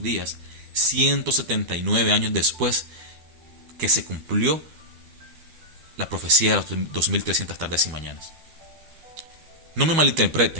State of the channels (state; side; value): late; left; 12 ms